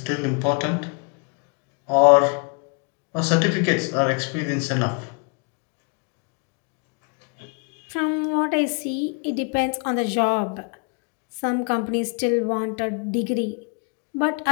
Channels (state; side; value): quieter; right; 36.1 dB